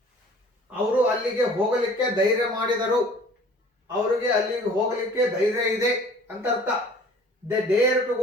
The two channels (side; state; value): both; normal; correlation 0.50